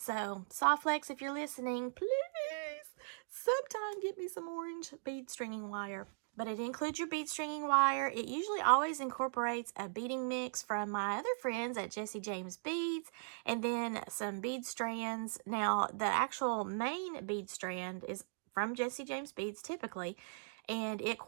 Softflex, if you're listening, please sometime get me some orange bead stringing wire. But it includes your bead stringing wire. It usually always incorporates a beading mix from my other friends at Jesse James Beads, and then some bead strands. Now, the actual main bead strand is from Jesse James Beads typically, and it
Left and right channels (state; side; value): silent; left; digital silence